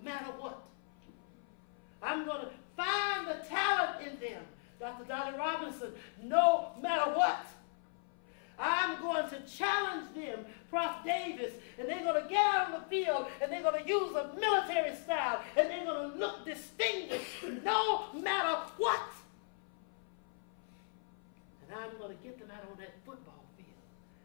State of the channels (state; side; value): silent; right; 53 dB below the other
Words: what. I'm going to find the talent in them, Dr. Dolly Robinson, no matter what. I'm going to challenge them, Prof. Davis, and they're going to get out on the field and they're going to use a military style and they're going to look distinguished no matter what. And I'm going to get them out on that football field